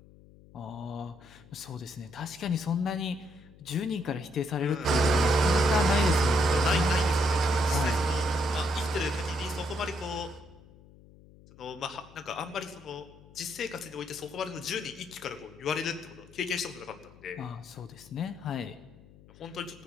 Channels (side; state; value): left; noise; hum, 23 dB below the sound